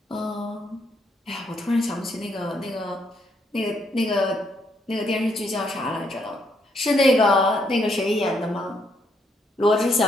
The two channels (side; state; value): both; normal; correlation 0.74